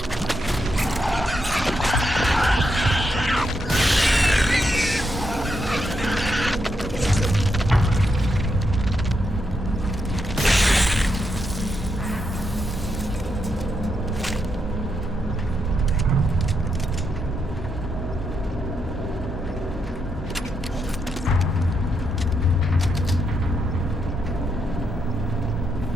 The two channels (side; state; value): both; normal; correlation 0.81